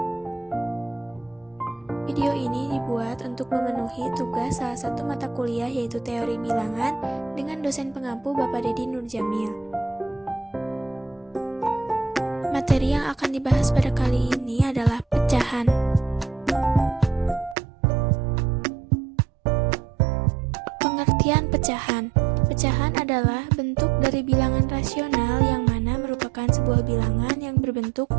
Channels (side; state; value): left; drops out; at 17.6 s